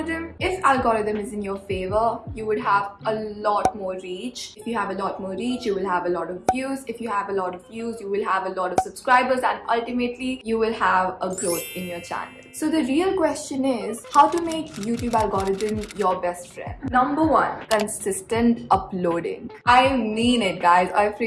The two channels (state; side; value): identical; both; correlation 1.00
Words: If algorithm is in your favor, you would have a lot more reach. If you have a lot more reach, you will have a lot of views. If you have a lot of views, you will have a lot of subscribers, and ultimately you will have a growth in your channel. So the real question is how to make YouTube algorithm your best friend. Number one, consistent uploading. I mean it, guys. I